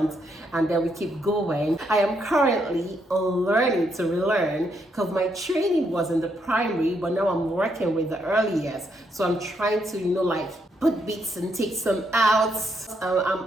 and then we keep going. I am currently learning to relearn because my training was in the primary, but now I'm working with the early years. So I'm trying to, like, put bits and take some out. I'm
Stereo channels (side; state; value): both; normal; correlation 0.76